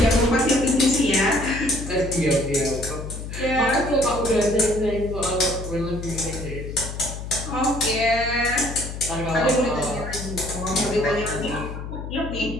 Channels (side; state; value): left; noise; hum, 8 dB below the sound